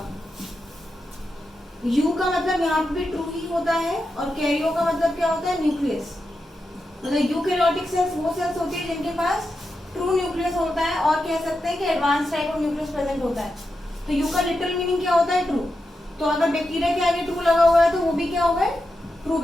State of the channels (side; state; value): both; normal; correlation 0.88